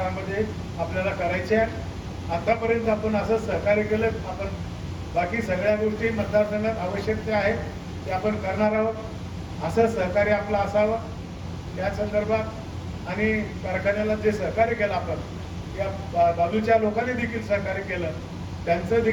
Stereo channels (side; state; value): both; identical; correlation 1.00